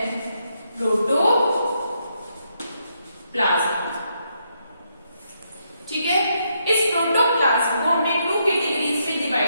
प्रोटोप्लाज्म। ठीक है, इस प्रोटोप्लाज्म को हमने 2 कैटेगरीज में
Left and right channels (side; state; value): both; inverted; correlation -0.78